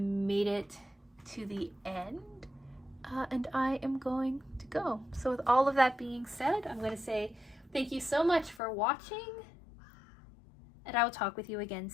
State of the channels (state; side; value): drops out; right; at 8.6 s